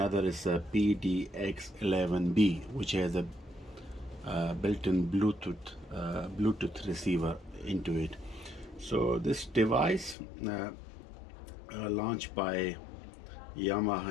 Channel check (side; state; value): right; drops out; at 10.2 s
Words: is a PDX-11B, which has a built-in Bluetooth receiver into it. So this device launched by